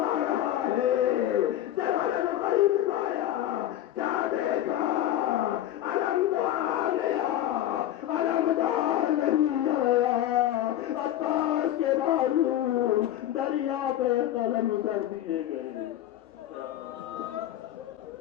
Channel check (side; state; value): right; quieter; 12.6 dB